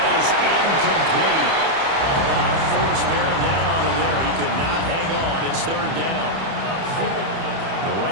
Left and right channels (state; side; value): late; left; 30 ms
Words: is incomplete. A lot of force bearing down on him there. He could not hang on. It's 3rd down. Now